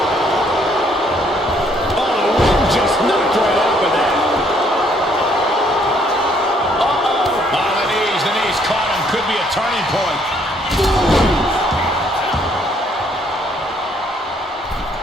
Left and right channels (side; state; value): both; normal; correlation 0.66